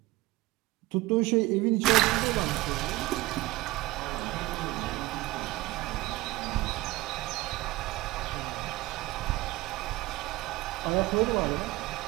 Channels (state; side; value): quieter; left; 19.2 dB